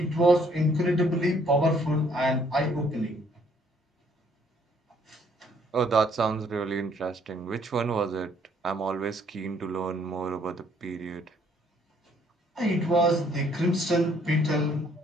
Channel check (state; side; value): normal; both; correlation 0.64